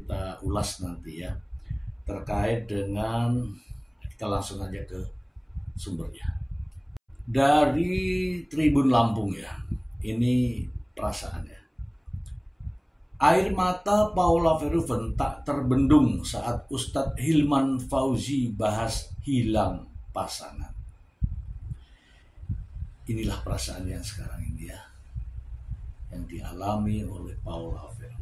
ulas nanti ya, terkait dengan, kita langsung aja ke sumbernya. Dari Tribun Lampung ya, ini perasaannya. Air mata Paula Verhoeven tak terbendung saat Ustadz Hilman Fauzi bahas hilang pasangan. Inilah perasaan yang sekarang ini ya, yang dialami oleh Paula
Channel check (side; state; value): both; identical; correlation 1.00